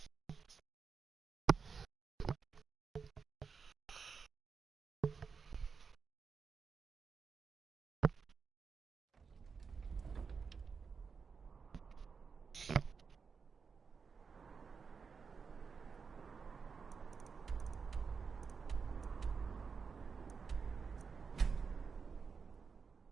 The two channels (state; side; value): quieter; left; 5.5 dB